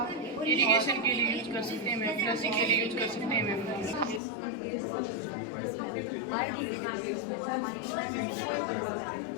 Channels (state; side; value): drops out; right; at 4.2 s